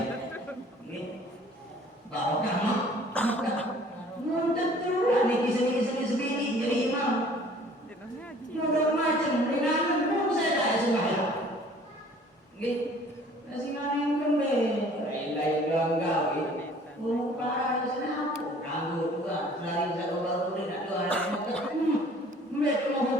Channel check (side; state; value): both; normal; correlation 0.53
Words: Bawa kamu. Tentu ada kisah-kisah sebini jadi imam. Mudah macam dengan saya tak sembahyang. Nasi maning kembali. Lain langgar. Lupa senang, kanggo juga selain satu baru ni nak doa nak mereka mau